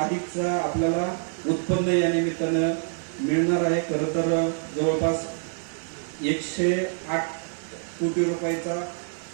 आपल्याला उत्पन्न या निमित्तानं मिळणार आहे. खरं तर जवळपास 108 कोटी रुपयाचा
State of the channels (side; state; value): left; silent; 61 dB below the other